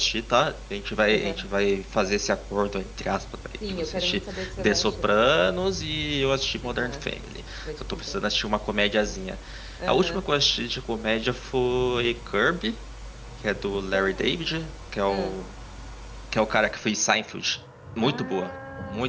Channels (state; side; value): identical; both; correlation 1.00